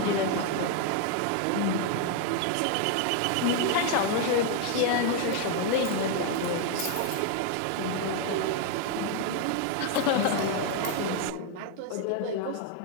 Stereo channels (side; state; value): both; different; correlation 0.01